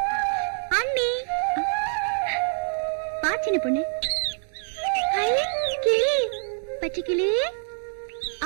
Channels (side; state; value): left; silent; digital silence